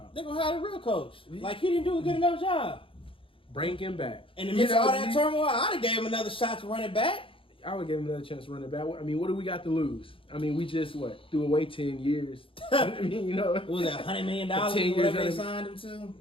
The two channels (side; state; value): right; late; 0.26 ms